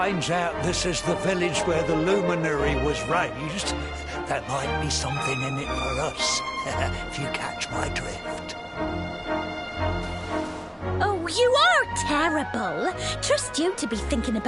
out this is the village where the luminary was raised, there might be something in it for us, if you catch my drift. Oh, you are terrible. Trust you to be thinking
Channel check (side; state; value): both; identical; correlation 1.00